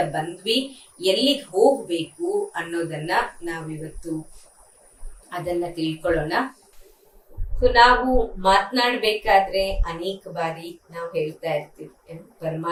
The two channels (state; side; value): identical; both; correlation 1.00